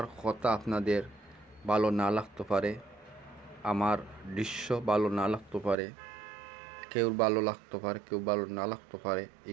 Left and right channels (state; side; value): drops out; left; at 5.8 s